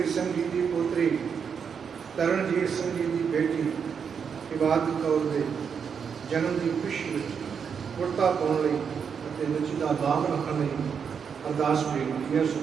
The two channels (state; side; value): quieter; left; 6.7 dB